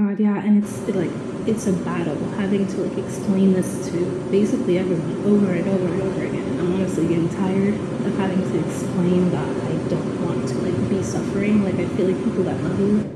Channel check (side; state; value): both; identical; correlation 1.00